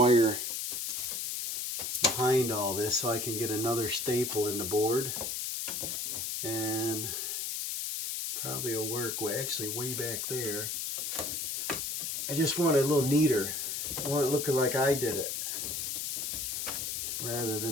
behind all this so I can get another staple in the board. And probably will work. Well, actually way back there. I just want it a little neater. I want it looking like I did it. Rather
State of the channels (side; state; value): left; noise; hiss, 2 dB below the sound